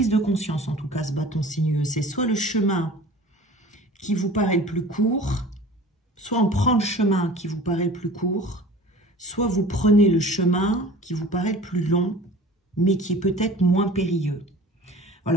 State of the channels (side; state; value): both; normal; correlation 0.42